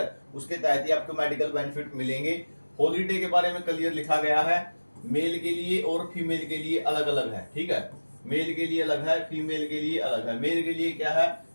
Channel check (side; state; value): both; inverted; correlation -1.00